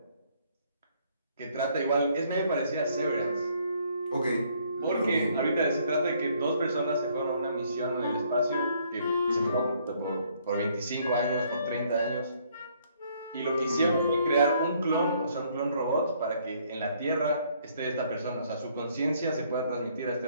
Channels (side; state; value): both; inverted; correlation -0.66